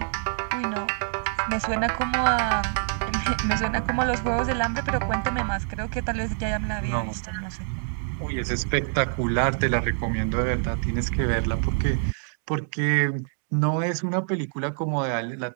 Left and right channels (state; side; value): silent; left; digital silence